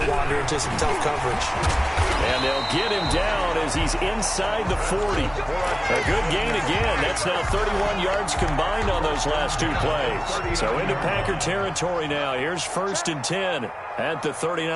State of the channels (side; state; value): both; identical; correlation 1.00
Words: wander into some tough coverage. And they'll get him down as he's inside the 40. A good gain again. That's now 31 yards combined on those last 2 plays. So into Packer territory now. Here's 1st and 10 at the